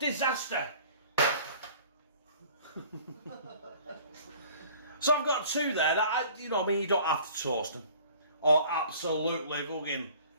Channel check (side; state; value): both; inverted; correlation -0.49